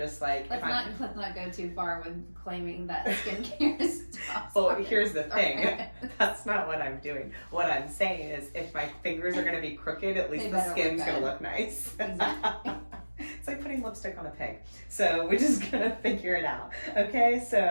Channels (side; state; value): both; inverted; correlation -1.00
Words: like, let's not go too far with claiming that skincare stops. Well, here's the thing. That's not what I'm doing. What I'm saying is, if my fingers are going to be crooked, at least the skin's going to look nice. Exactly. It's like putting lipstick on a pig. So we're just going to figure it out. Okay?